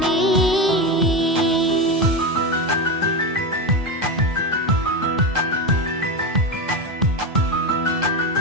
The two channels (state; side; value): normal; both; correlation 0.16